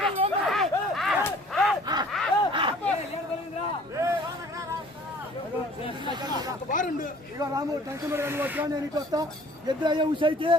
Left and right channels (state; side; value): normal; both; correlation 0.52